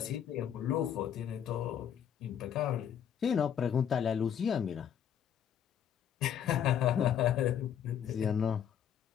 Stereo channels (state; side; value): quieter; right; 9.0 dB